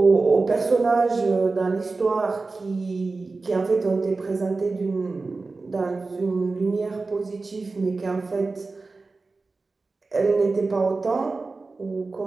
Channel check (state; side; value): quieter; left; 3.8 dB